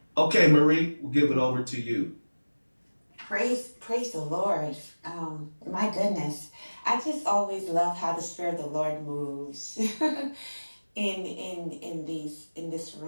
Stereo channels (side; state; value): both; inverted; correlation -1.00